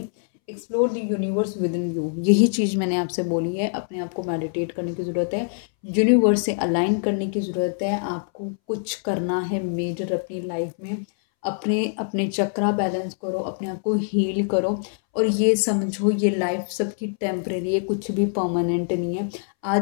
explore the universe within you. यही चीज़ मैंने आपसे बोली है, अपने आप को मेडिटेट करने की ज़रूरत है, यूनिवर्स से अलाइन करने की ज़रूरत है। आपको कुछ करना है मेजर अपनी लाइफ में, अपने अपने चक्रा बैलेंस करो, अपने आप को हील करो, और ये समझो ये लाइफ सबकी टेम्परेरी है, कुछ भी परमानेंट नहीं है।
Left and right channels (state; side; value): silent; right; 63 dB below the other